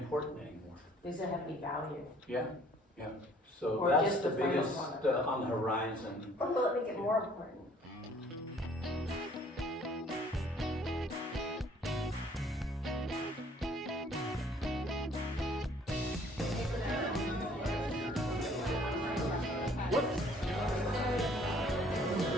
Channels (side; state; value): both; normal; correlation 0.58